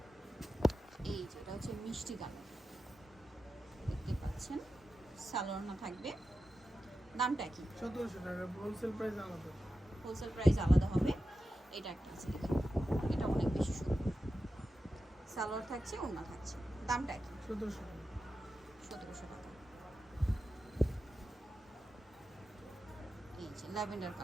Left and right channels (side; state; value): both; normal; correlation 0.92